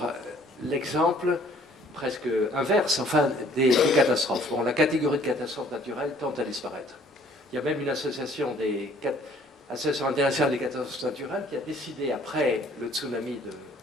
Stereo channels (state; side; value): normal; both; correlation 0.58